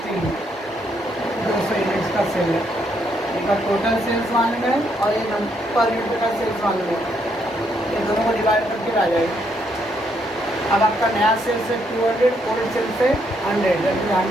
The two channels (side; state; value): both; normal; correlation 0.74